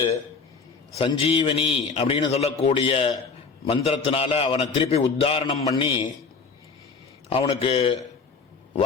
சஞ்சீவனி அப்படின்னு சொல்லக்கூடிய மந்திரத்தினால அவனை திருப்பி உத்தாரணம் பண்ணி அவனுக்கு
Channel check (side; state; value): right; quieter; 5.0 dB